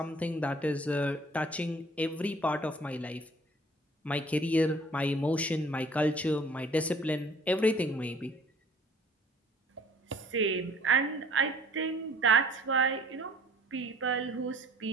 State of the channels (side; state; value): both; normal; correlation 0.53